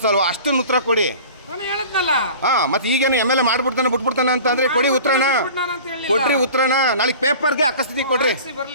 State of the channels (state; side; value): inverted; both; correlation -0.41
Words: ಅಷ್ಟನ್ನು ಉತ್ತರ ಕೊಡಿ. ಹಾಂ, ಮತ್ತೆ ಈಗೇನು ಎಮ್.ಎಲ್.ಎ ಮಾಡ್ಬಿಡ್ತಾನೆ ಬಿಟ್ಬಿಡ್ತಾನೆ ಅಂತಂದರೆ ಕೊಡಿ ಉತ್ತರನ. ಕೊಡ್ರಿ ಉತ್ತರನ. ನಾಳೆ ಪೇಪರ್ಗೆ ಅಕಸ್ಮಾತ್ ಕೊಡ್ರಿ.